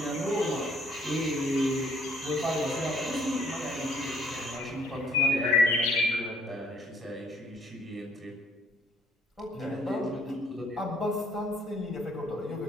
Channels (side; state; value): both; normal; correlation 0.62